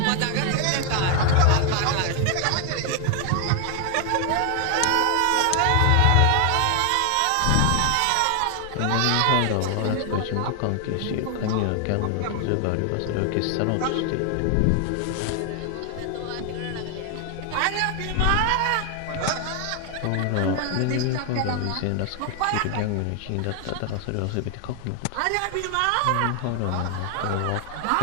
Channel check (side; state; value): both; different; correlation 0.00